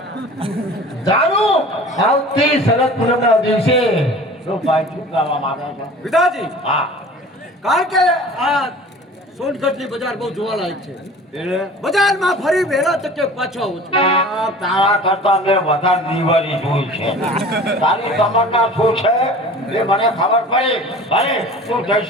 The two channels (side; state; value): both; normal; correlation 0.42